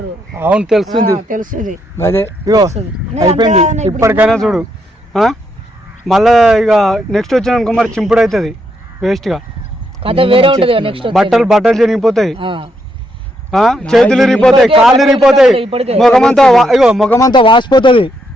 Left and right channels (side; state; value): both; normal; correlation 0.78